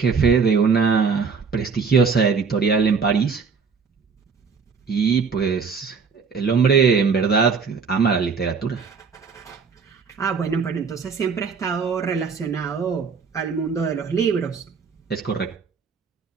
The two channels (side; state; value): left; quieter; 5.5 dB